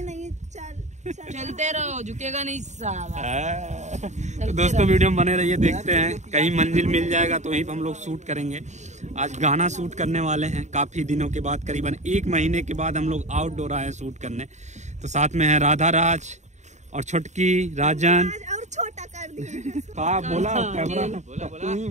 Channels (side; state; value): left; late; 0.34 ms